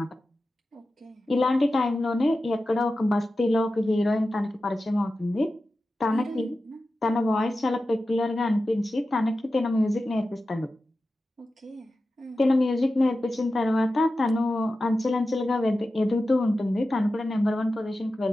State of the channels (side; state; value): both; normal; correlation 0.93